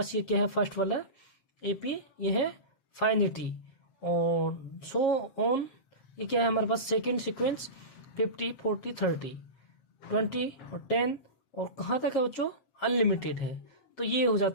ये क्या है, फर्स्ट वाला एपी ये है फाइनिटी, और सो ऑन ये क्या है हमारे पास, सेकेंड सीक्वेंस 50 40 30 20 और 10, और कहाँ तक है बच्चों, अनलिमिटेड है। तो ये हो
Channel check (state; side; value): late; right; 7.8 ms